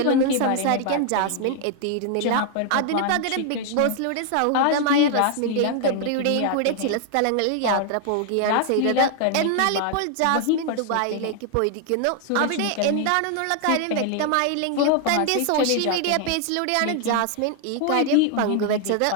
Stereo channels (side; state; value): both; different; correlation 0.00